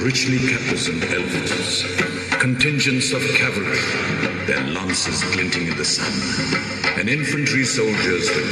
richly caparisoned elephants. Contingents of cavalry, their lances glinting in the sun, and infantry soldiers with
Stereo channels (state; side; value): identical; both; correlation 1.00